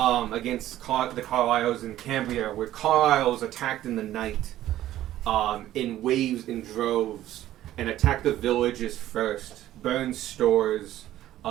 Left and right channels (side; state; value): left; quieter; 13.6 dB